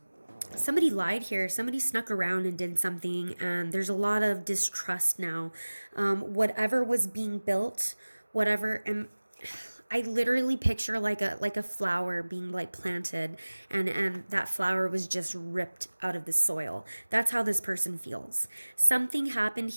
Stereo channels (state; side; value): inverted; both; correlation -1.00